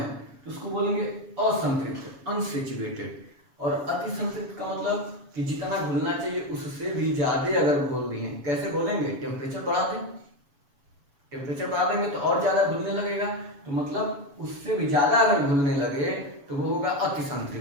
तो उसको बोलेंगे असंतृप्त, अनसेचुरेटेड। और अति संतृप्त का मतलब कि जितना घुलना चाहिए उससे भी ज्यादा अगर घोल दिए। कैसे घोलेंगे? टेम्परेचर बढ़ा दें, टेम्परेचर बढ़ा देंगे तो और ज्यादा घुलने लगेगा, तो मतलब उससे भी ज्यादा अगर घुलने लगे तो वो होगा अति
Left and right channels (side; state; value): left; late; 7.1 ms